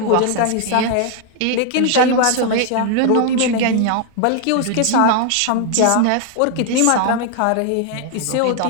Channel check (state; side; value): different; both; correlation 0.00